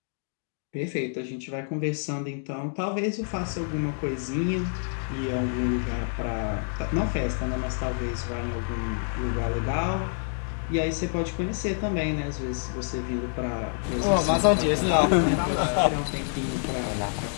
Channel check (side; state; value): right; silent; 60 dB below the other